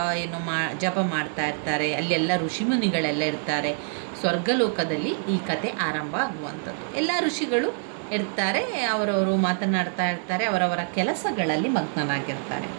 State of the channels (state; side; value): silent; left; 59 dB below the other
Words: ಜಪ ಮಾಡ್ತಾ ಇರ್ತಾರೆ. ಅಲ್ಲೆಲ್ಲ ಋಷಿಮುನಿಗಳೆಲ್ಲ ಇರ್ತಾರೆ. ಸ್ವರ್ಗಲೋಕದಲ್ಲಿ ಈ ಕತೆ ಆರಂಭ ಆಗುವಂಥದ್ದು. ಎಲ್ಲ ಋಷಿಗಳು ಇರ್ತಾರೆ, ಅವರವರು ಮಾತನಾಡ್ತಾ ಇರ್ತಾರೆ, ಅವರವರ ಕೆಲಸಗಳಲ್ಲಿ ಮಗ್ನರಾಗಿರ್ತಾರೆ.